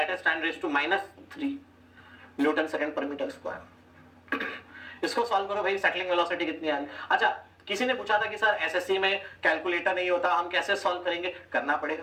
is 10 raise to -3 newton second पर metre square. इसको सॉल्व करो भाई, सेटलिंग वेलोसिटी कितनी आ रही है। अच्छा, किसी ने पूछा था कि सर एसएससी में कैलकुलेटर नहीं होता, हम कैसे सॉल्व करेंगे? करना पड़ेगा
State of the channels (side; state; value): both; identical; correlation 1.00